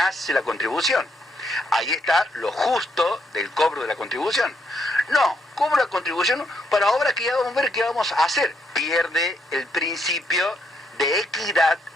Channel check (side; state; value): both; normal; correlation 0.75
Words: la contribución. Ahí está lo justo del cobro de la contribución. No, cobro la contribución para obras que ya vamos a ver qué vamos a hacer. Pierde el principio de equidad